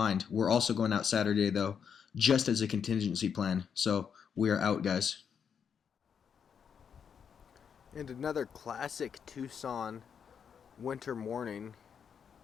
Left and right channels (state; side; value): quieter; right; 7.2 dB